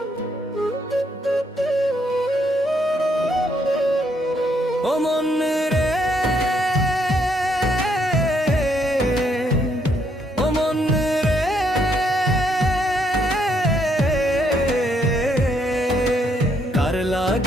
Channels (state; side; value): normal; both; correlation 0.73